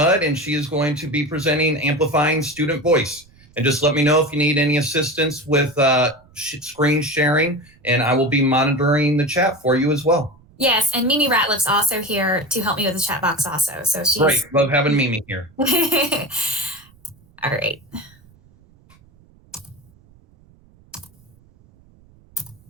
and she is going to be presenting Amplifying Student Voice. And just let me know if you need any assistance with screen sharing, and I will be monitoring the chat for you as well. Yes, and Mimi Ratliff's also here to help me with the chat box also. So she's great. Love having Mimi here. All right.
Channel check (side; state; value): right; noise; rumble, 29 dB below the sound